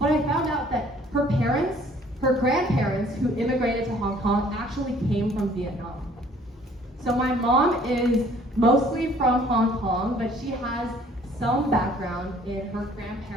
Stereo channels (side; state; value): both; normal; correlation 0.57